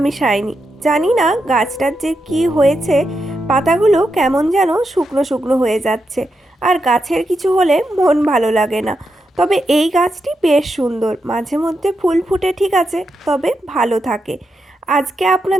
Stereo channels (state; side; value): normal; both; correlation 0.85